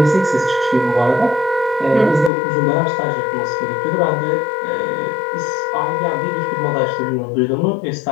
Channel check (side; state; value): right; drops out; at 2.3 s